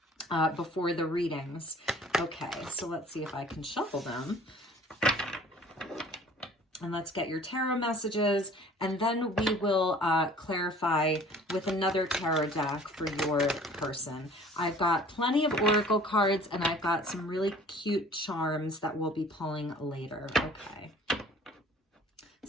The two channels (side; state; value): both; normal; correlation 0.50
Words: before the readings. Okay, so let's see if I can shuffle them. And let's get your tarot messages, and then we will clarify with another tarot deck for your person. I've got plenty of oracle cards, and I've got some really cute charms that we'll be pulling later. Okay.